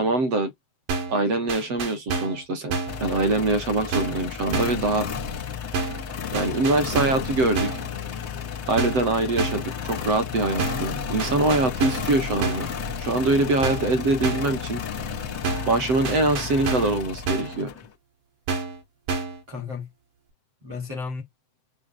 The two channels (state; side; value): late; left; 7.8 ms